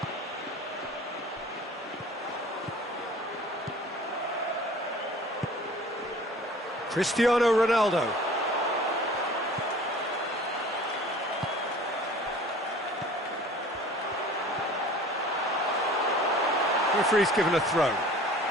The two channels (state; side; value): normal; both; correlation 0.46